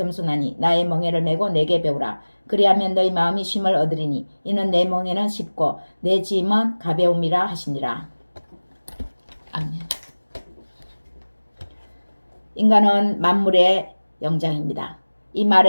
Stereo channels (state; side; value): inverted; both; correlation -1.00